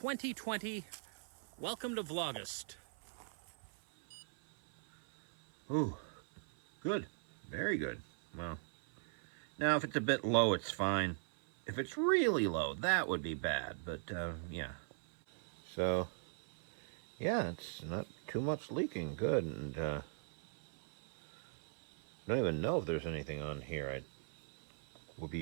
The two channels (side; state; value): left; silent; 51 dB below the other